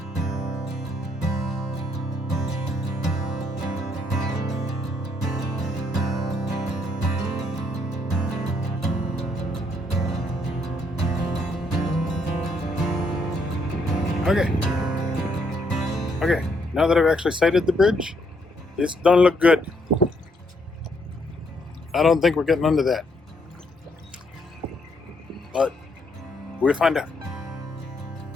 Okay, now that I've actually sighted the bridge, this don't look good. I don't think we're getting under that. But we'll find out.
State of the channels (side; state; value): both; normal; correlation 0.72